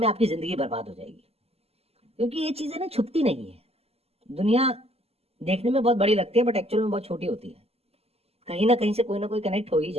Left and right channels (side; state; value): left; late; 0.29 ms